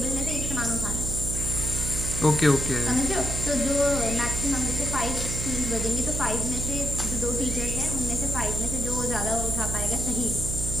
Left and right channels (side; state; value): right; noise; hum, 4 dB below the sound